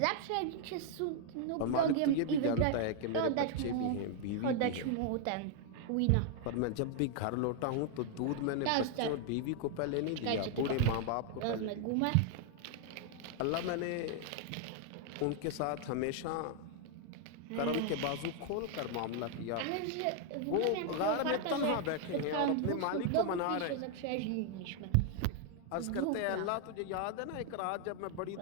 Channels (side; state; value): both; different; correlation 0.00